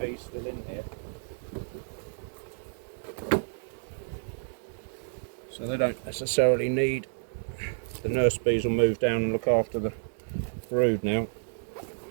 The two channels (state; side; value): silent; left; digital silence